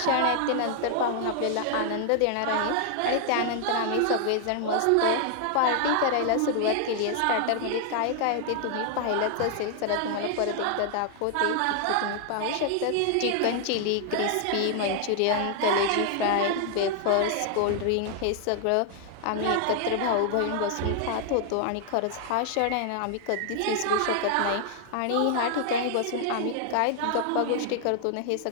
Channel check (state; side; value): different; both; correlation 0.00